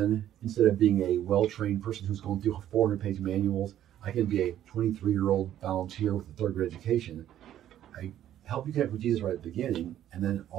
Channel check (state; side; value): quieter; left; 11.6 dB